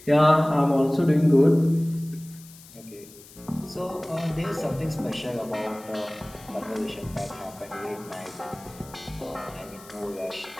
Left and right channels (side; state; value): left; noise; hiss, 21 dB below the sound